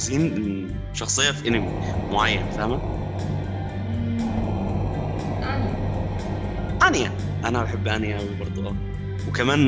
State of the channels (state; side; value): identical; both; correlation 1.00